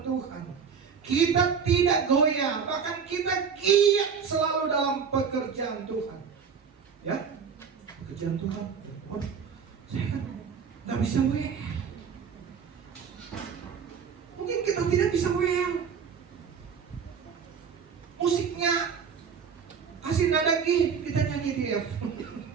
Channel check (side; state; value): left; quieter; 6.5 dB